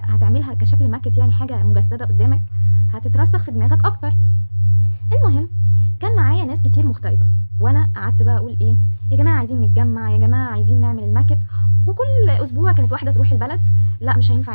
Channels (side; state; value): both; inverted; correlation -1.00